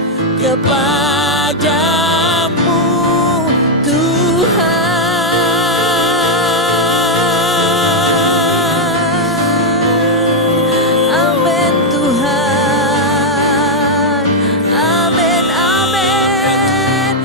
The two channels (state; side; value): normal; both; correlation -0.01